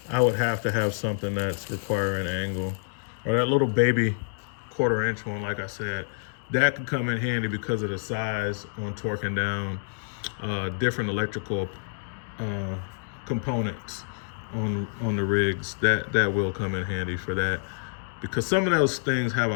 I would have to have something that's requiring angle. Or that little baby 1/4 inch one, like I said, that could come in handy because of the size on torquing down different electrical components on the rigs. That will come in handy for that, because some of those things have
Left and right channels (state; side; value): silent; right; digital silence